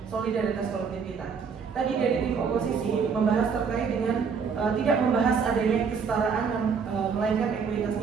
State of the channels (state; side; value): quieter; left; 6.0 dB